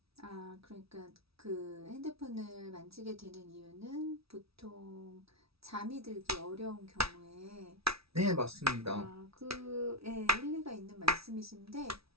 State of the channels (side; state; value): left; late; 0.76 ms